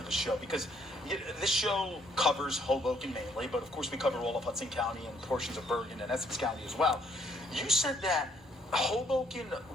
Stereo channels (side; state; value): both; normal; correlation 0.66